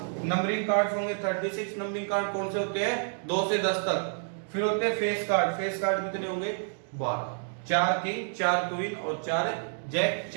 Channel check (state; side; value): silent; left; digital silence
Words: नंबरिंग कार्ड्स होंगे 36। नंबरिंग कार्ड कौन से होते हैं 2 से 10 तक। फिर होते हैं फेस कार्ड। फेस कार्ड कितने होंगे 12, 4 किंग, 4 क्वीन और 4 जैक,